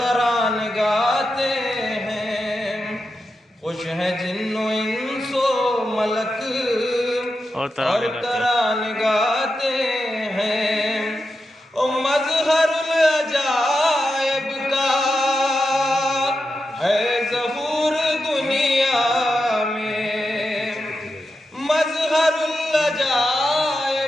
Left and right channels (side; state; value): both; normal; correlation 0.89